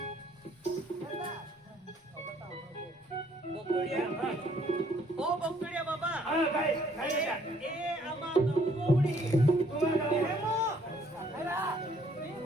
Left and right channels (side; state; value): both; normal; correlation 0.64